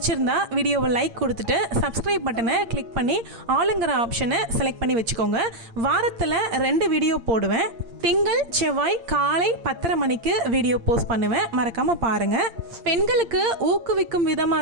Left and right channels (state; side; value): late; left; 8.7 ms